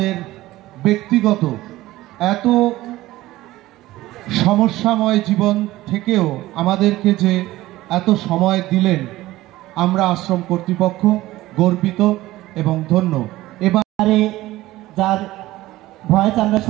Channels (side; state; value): left; quieter; 16.9 dB